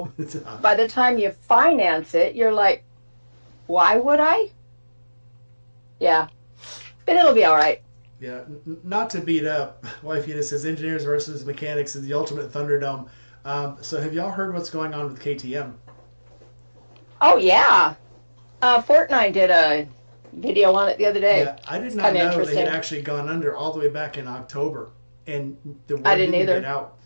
by the time you finance it, you're like, why would I? Yeah, but it'll be all right. Yeah, not to beat up, Wife Unit says engineers versus mechanics is the ultimate Thunderdome. So have y'all heard what's going on with KTM? Oh yeah. Fortnite did a video on it the other day. Yeah, I did It's not kind of know they had interesting. actually gone under all the way back in October, and the I word didn't didn't get either. out.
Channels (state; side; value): inverted; both; correlation -1.00